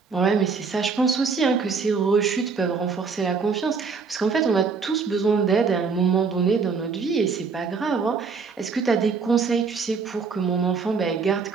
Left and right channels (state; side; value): quieter; left; 5.1 dB